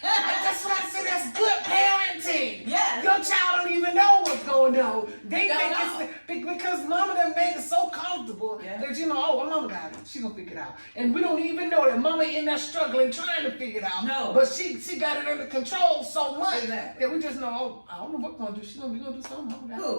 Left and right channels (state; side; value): inverted; both; correlation -1.00